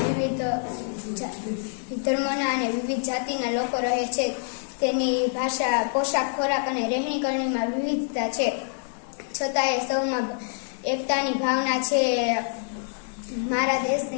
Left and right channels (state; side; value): silent; right; digital silence